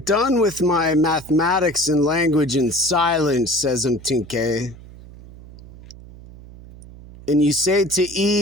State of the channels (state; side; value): noise; right; hum, 19 dB below the sound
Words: with my mathematics and language and silence, says Mtinke, and you say to